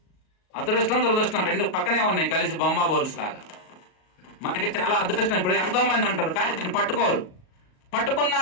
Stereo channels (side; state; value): right; late; 38 ms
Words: అదృష్టం దురదృష్టం 2 పక్కనే ఉన్నాయి, కలిసి బొమ్మ బోల్స్ లాగా. మనకి చాలా అదృష్టం. ఇప్పుడు ఎంతోమంది అంటారు కానీ దీన్ని పట్టుకున్నా